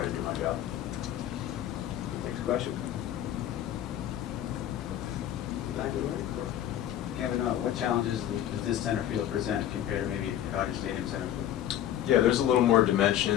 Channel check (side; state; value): right; quieter; 11.6 dB